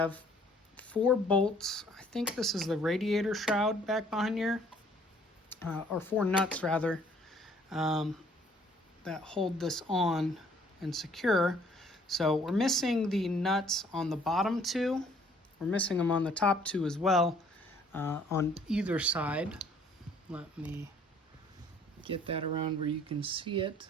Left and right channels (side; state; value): both; normal; correlation 0.60